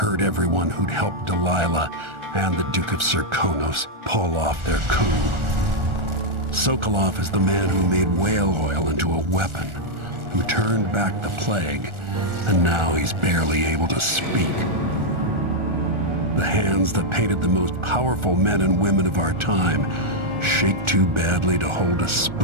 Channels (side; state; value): left; late; 1.4 ms